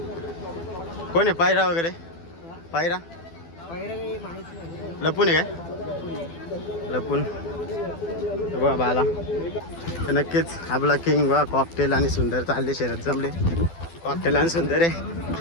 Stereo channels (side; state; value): right; late; 12 ms